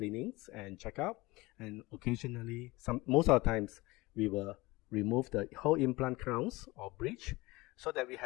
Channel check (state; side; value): quieter; right; 21.7 dB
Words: and checkup, and occasionally, most of the times, we will remove the whole implant crowns or bridge so that we